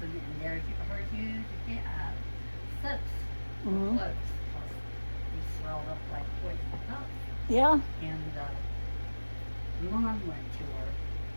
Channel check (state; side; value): inverted; both; correlation -1.00